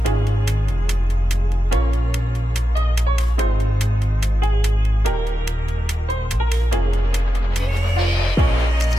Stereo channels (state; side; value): normal; both; correlation 0.90